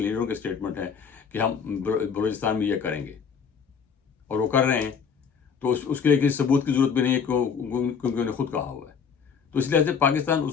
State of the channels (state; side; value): quieter; right; 6.6 dB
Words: لیڈروں کے اسٹیٹمنٹ ہیں کہ ہم بلوچستان میں یہ کریں گے، اور وہ کر رہے ہیں. تو اس کے لیے کسی ثبوت کی ضرورت بھی نہیں ہے کیونکہ انہوں نے خود کہا ہوا ہے. تو اس لحاظ سے پاکستان